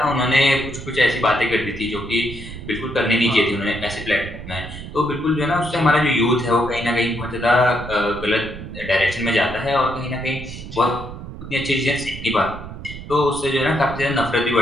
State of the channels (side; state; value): right; noise; rumble, 11 dB below the sound